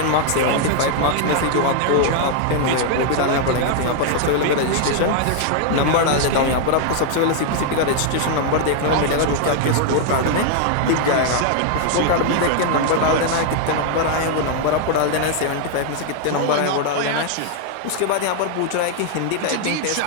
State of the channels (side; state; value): both; different; correlation 0.00